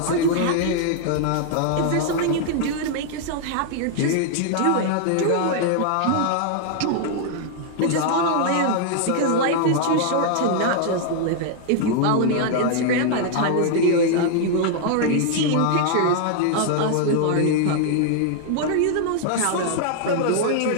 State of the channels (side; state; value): both; different; correlation 0.00